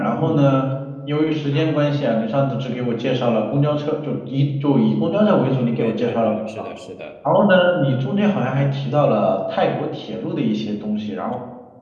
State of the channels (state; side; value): identical; both; correlation 1.00